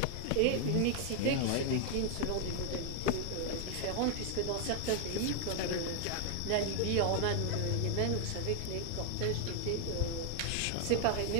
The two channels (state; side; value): different; both; correlation 0.00